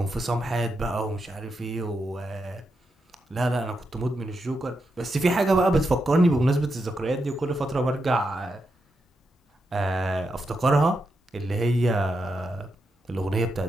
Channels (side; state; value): both; normal; correlation 0.85